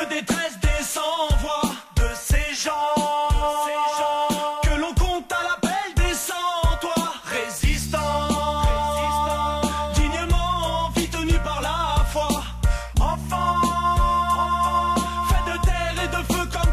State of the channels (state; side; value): identical; both; correlation 1.00